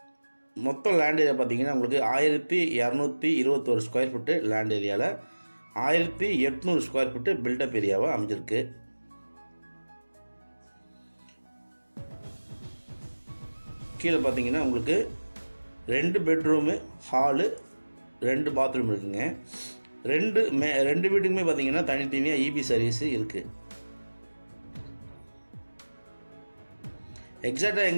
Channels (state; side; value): inverted; both; correlation -1.00